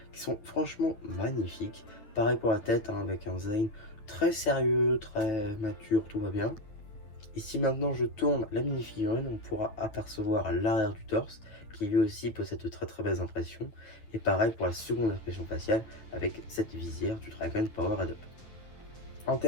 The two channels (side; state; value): right; late; 9.4 ms